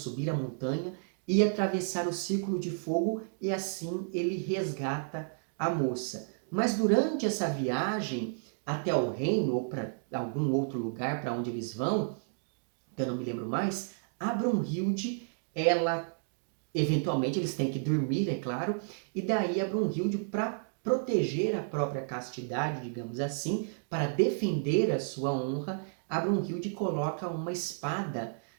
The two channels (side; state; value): left; silent; digital silence